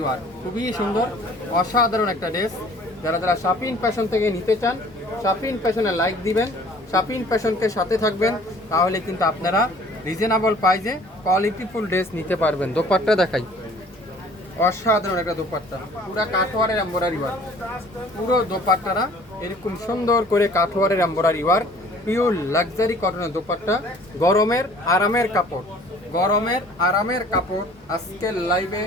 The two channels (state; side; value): normal; both; correlation 0.51